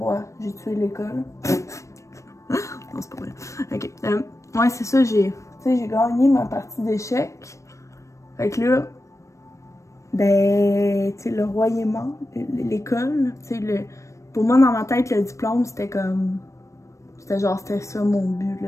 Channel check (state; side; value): late; right; 0.15 ms